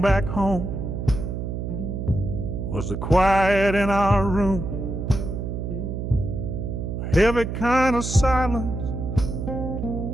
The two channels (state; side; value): noise; right; hum, 4 dB below the sound